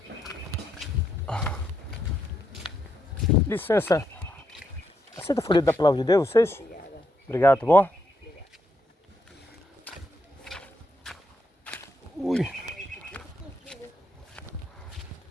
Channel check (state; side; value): normal; both; correlation 0.79